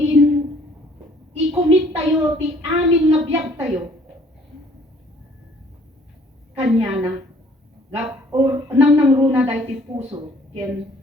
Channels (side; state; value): both; normal; correlation 0.58